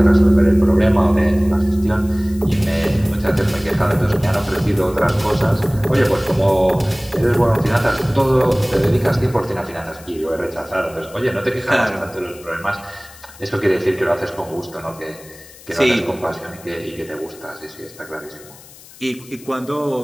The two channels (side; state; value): left; noise; hiss, 21 dB below the sound